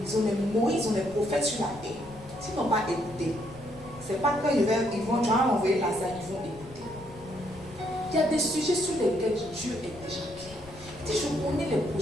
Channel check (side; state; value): left; noise; rumble, 19 dB below the sound